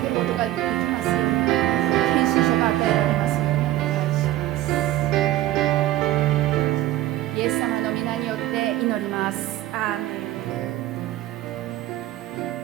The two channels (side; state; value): left; quieter; 14.9 dB